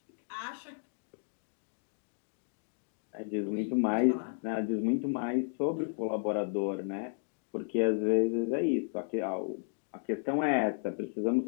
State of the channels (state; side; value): silent; right; digital silence